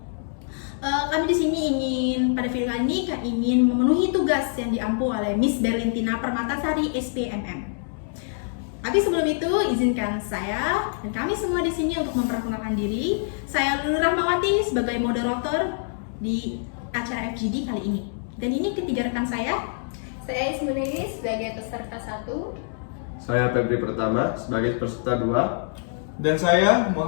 Kami di sini pada video kali ini ingin memenuhi tugas yang diampu oleh Miss Berlintina Permatasari, SPMM. Tapi sebelum itu, izinkan saya dan kami semua di sini untuk memperkenalkan diri. Saya Lulu Rahmawati sebagai moderator di acara FGD kali ini. Dan ini ketiga rekan saya. Saya Ismunini sebagai peserta 1. Saya Febri Pertama sebagai peserta 2. Dan saya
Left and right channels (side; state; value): right; silent; digital silence